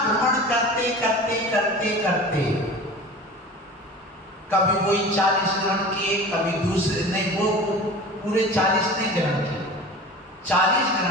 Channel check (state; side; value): normal; both; correlation 0.37